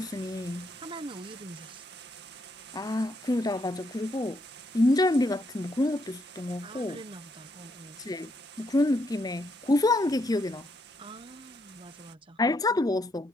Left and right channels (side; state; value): both; normal; correlation 0.76